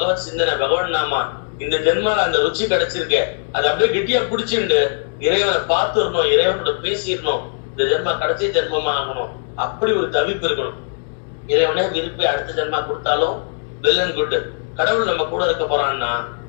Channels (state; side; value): silent; right; digital silence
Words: சிந்தனை, பகவான் நாமா, இந்த ஜென்மால அந்த ருச்சி கிடைச்சிருக்க, அதை அப்படியே கெட்டியா பிடிச்சிட்டு இறைவனை பார்த்துடணும், இறைவனோட பேசிடணும். இந்த ஜென்மா கடைசி ஜென்மமா ஆகணும், அப்படி ஒரு தவிப்பு இருக்கணும். இறைவனே விருப்பி அடுத்த ஜென்மா கொடுத்தாலும் வெல் அண்ட் குட். கடவுள் நம்ம கூட இருக்க போறான்னா